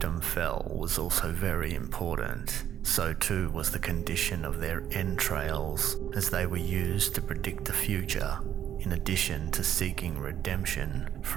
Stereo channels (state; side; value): quieter; left; 10.3 dB